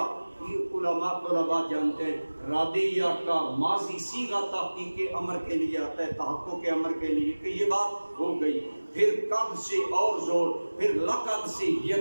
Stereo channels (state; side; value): inverted; both; correlation -1.00